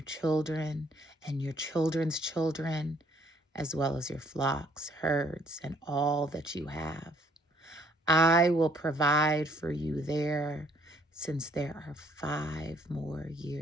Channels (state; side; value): normal; both; correlation 0.64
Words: children and your children's children, as well as your flocks, herds, and all that you have. I will provide for you there, since there are 5 more